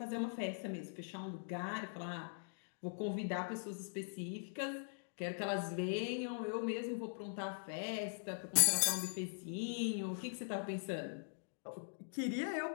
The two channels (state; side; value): silent; right; digital silence